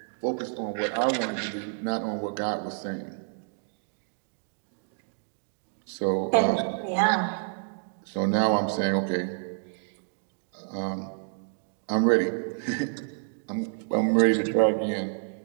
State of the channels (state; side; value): silent; left; 59 dB below the other